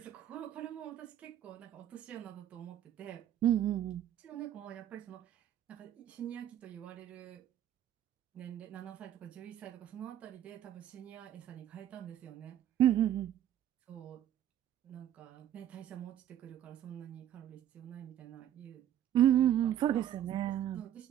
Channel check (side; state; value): left; quieter; 11.2 dB